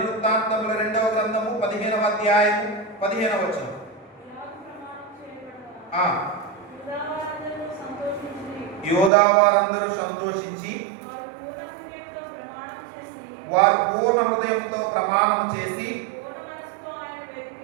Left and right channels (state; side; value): drops out; left; at 9.1 s